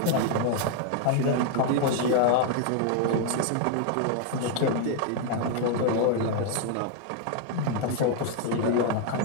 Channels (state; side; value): different; both; correlation 0.00